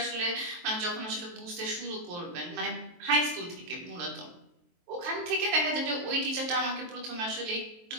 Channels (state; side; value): late; left; 23 ms